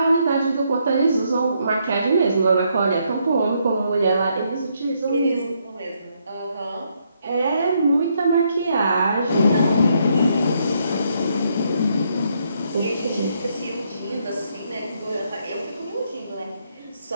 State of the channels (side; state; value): both; inverted; correlation -0.75